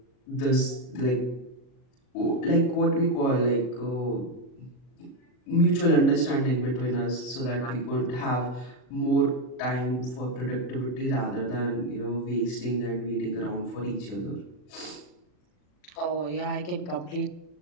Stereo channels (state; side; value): late; right; 40 ms